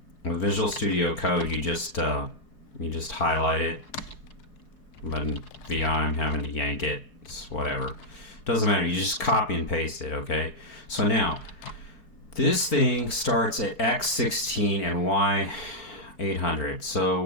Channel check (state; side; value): late; right; 4.7 ms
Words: with Visual Studio Code, you just highlight it. But in VI, I'm having to yank it. It's whatever. Doesn't matter. You just copy and paste it. Okay. So now, this thing starts at X16 and Y800. So